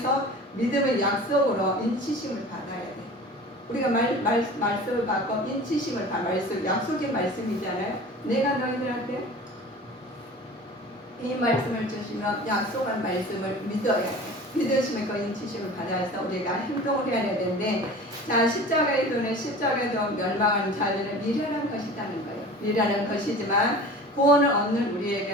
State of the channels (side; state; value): both; normal; correlation 0.39